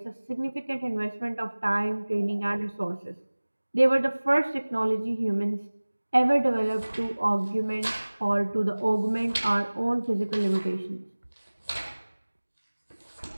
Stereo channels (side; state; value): both; inverted; correlation -1.00